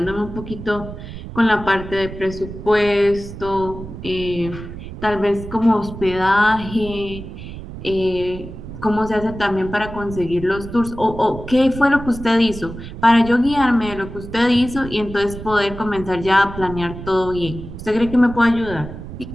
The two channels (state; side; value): noise; right; rumble, 11 dB below the sound